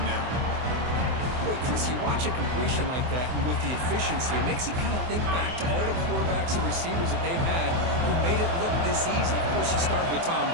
now. Boy, Chris, you watch a completion like that, and with the efficiency, it makes you kind of think back to all the quarterbacks and receivers that they've had who made it look this easy. Of course, you start with Tom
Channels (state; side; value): late; left; 24 ms